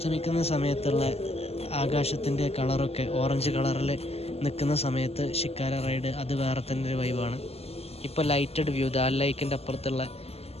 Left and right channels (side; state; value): right; late; 0.29 ms